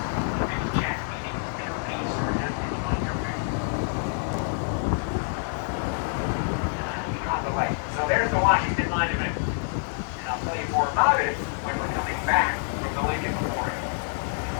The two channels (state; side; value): silent; right; 60 dB below the other